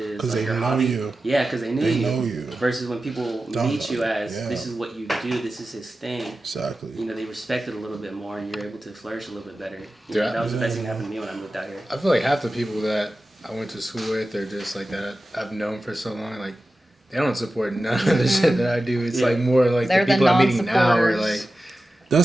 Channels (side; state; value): both; normal; correlation 0.94